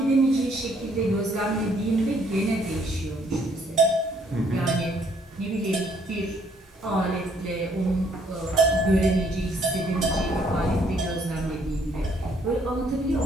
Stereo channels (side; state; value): both; normal; correlation 0.66